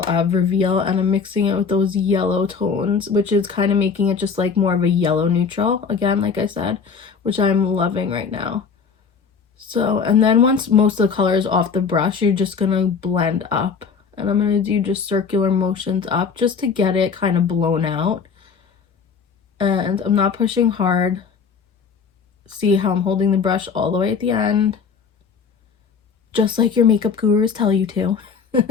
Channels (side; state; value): right; quieter; 5.9 dB